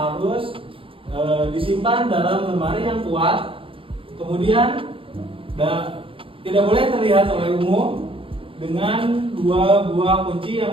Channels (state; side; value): late; left; 0.26 ms